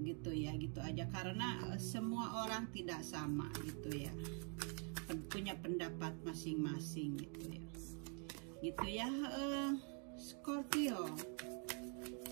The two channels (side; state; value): left; quieter; 39.8 dB